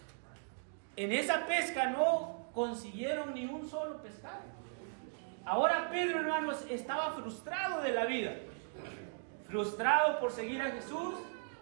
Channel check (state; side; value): silent; left; digital silence